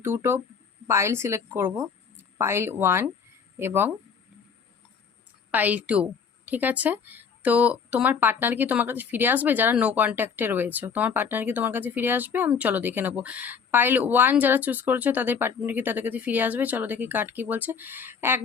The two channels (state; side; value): quieter; right; 6.2 dB